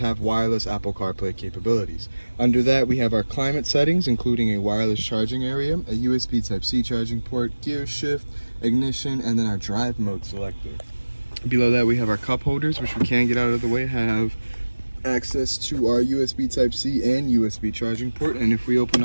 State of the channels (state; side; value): inverted; both; correlation -1.00